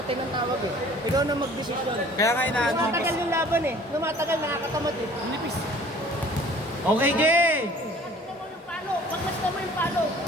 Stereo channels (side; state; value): both; normal; correlation 0.51